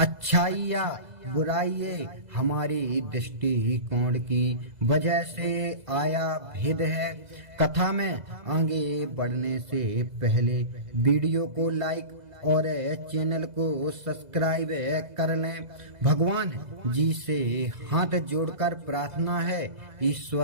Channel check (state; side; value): late; left; 2.0 ms